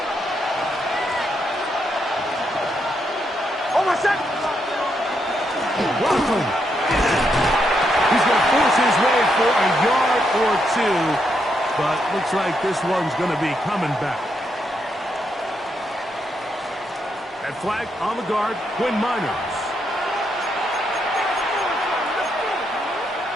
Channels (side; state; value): both; normal; correlation 0.79